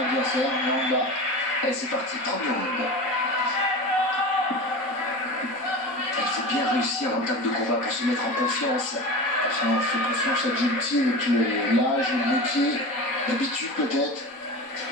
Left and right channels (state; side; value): late; right; 4.1 ms